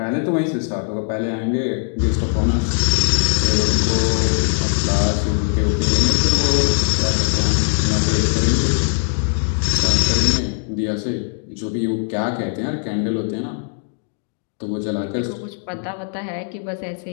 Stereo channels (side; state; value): right; silent; digital silence